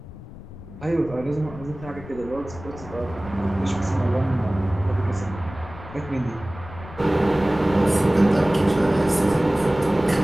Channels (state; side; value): noise; left; rumble, 15 dB below the sound